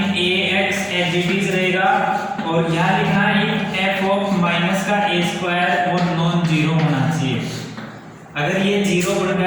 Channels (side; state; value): both; identical; correlation 1.00